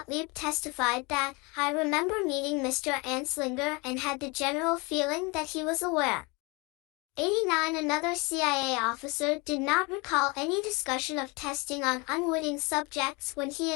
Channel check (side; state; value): right; quieter; 27.9 dB